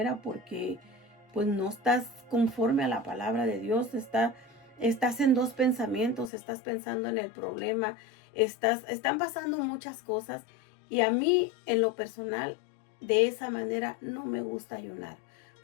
porque pues no estás conforme a la palabra de Dios. Estás en dos pensamientos, estás pensando en el problema, están pasando muchas cosas, y a mí en lo personal de esa manera no me gusta ayunar,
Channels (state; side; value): drops out; right; at 6.3 s